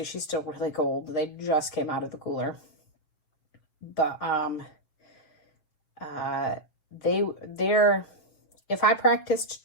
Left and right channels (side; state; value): right; late; 6.6 ms